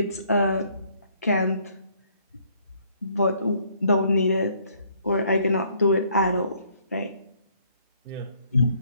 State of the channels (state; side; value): inverted; both; correlation -0.65